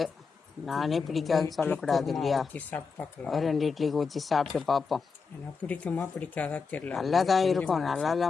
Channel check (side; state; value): right; quieter; 5.2 dB